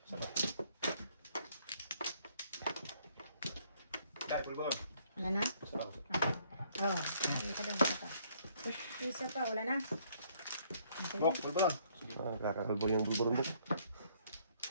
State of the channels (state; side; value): inverted; both; correlation -0.65